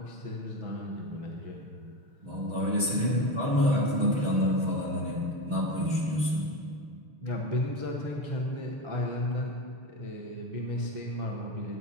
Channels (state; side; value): late; left; 6.4 ms